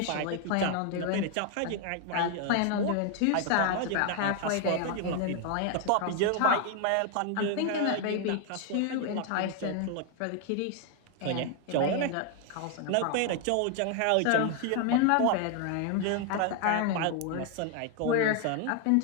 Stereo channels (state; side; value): different; both; correlation 0.00